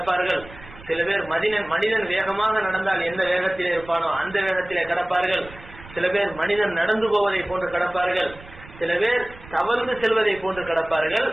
சில பேர் மனிதன் வேகமாக நடந்தால் எந்த வேகத்திலே இருப்பானோ அந்த வேகத்திலே கடப்பார்கள், சில பேர் மனிதன் நடந்து போவதை போன்று கடப்பார்கள், சில பேர் தவழ்ந்து செல்வதை போன்று கடப்பார்கள்,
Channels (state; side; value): noise; right; rumble, 19 dB below the sound